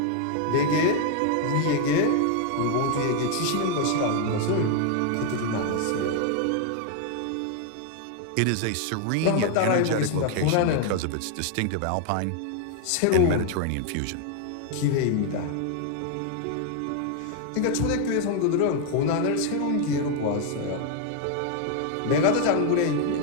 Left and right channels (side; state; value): both; different; correlation 0.01